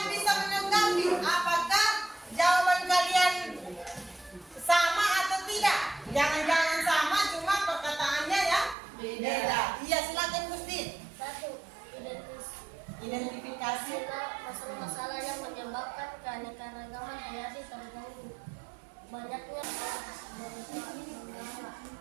bisa menanggapi apakah jawaban kalian sama atau tidak. Jangan-jangan sama, cuma perkataannya ya beda. Iya, silakan Gusti. 1. Identifikasi. Masalah-masalah yang menyebabkan keanekaragaman hayati terganggu. Banyaknya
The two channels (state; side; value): drops out; left; at 8.8 s